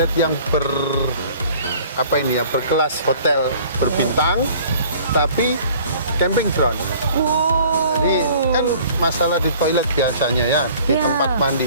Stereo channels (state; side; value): inverted; both; correlation -0.51